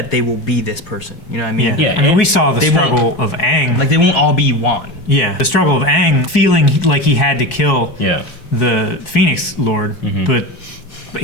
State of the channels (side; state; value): right; late; 4.6 ms